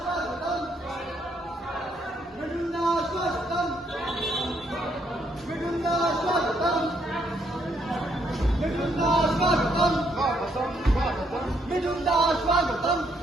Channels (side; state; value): both; normal; correlation 0.73